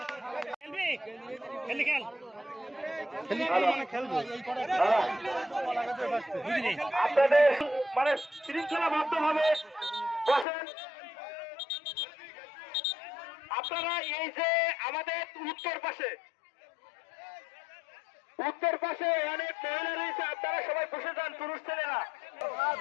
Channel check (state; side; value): drops out; right; at 10.5 s